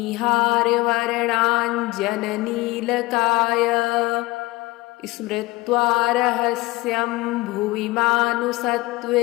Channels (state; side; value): quieter; right; 21.2 dB